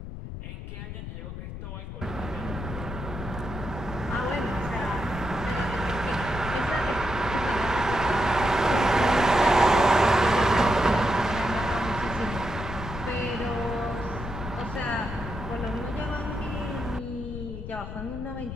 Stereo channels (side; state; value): left; noise; rumble, 8 dB below the sound